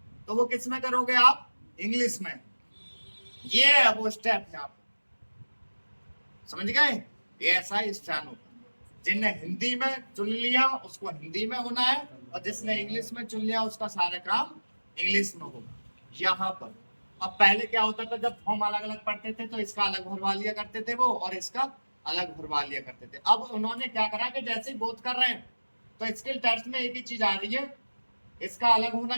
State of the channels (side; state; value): both; inverted; correlation -1.00